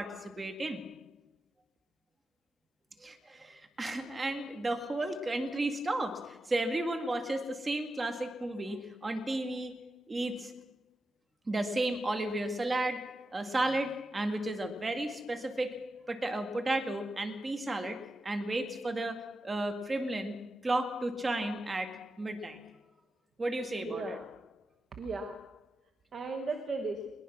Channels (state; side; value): normal; both; correlation 0.89